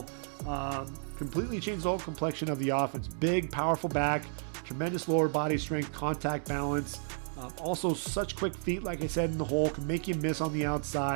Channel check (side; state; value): left; silent; 56 dB below the other